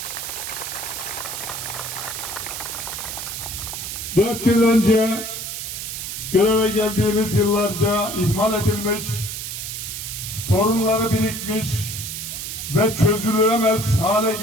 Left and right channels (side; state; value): right; noise; hiss, 6 dB below the sound